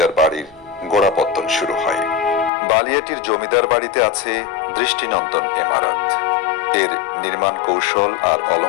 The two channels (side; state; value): right; drops out; at 2.5 s